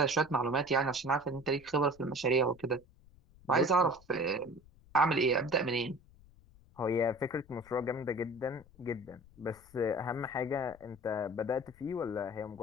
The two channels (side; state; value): left; noise; rumble, 25 dB below the sound